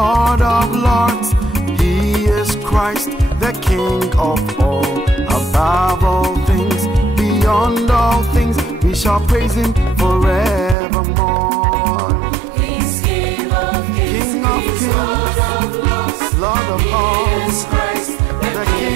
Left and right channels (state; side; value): drops out; left; at 10.8 s